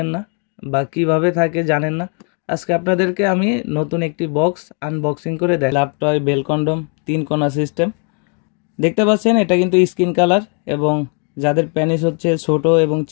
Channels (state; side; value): quieter; right; 39.7 dB